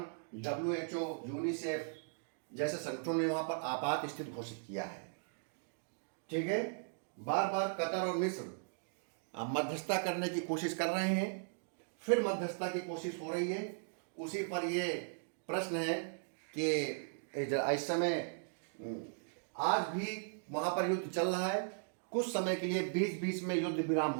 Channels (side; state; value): left; silent; digital silence